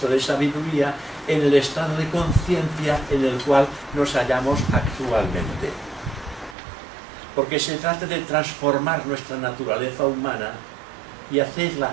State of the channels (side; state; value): left; drops out; at 6.6 s